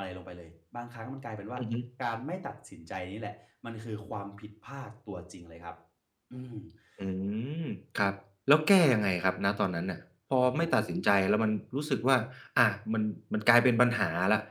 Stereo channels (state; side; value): identical; both; correlation 1.00